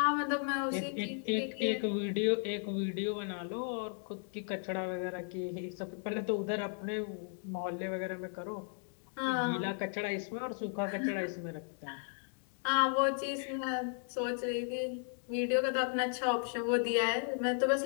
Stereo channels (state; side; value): silent; right; 54 dB below the other